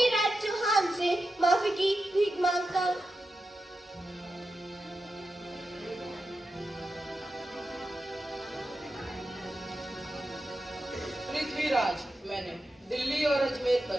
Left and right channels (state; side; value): normal; both; correlation 0.90